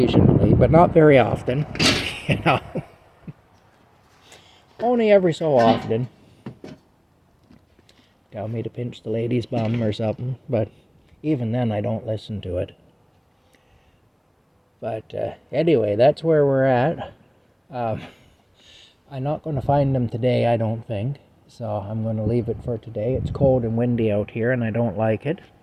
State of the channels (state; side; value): identical; both; correlation 1.00